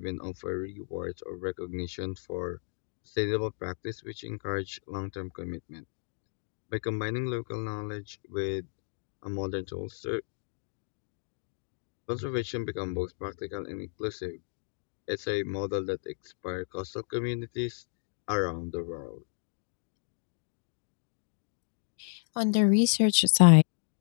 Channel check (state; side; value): silent; right; digital silence